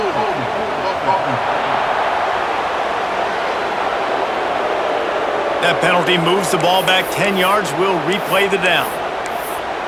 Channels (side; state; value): both; identical; correlation 1.00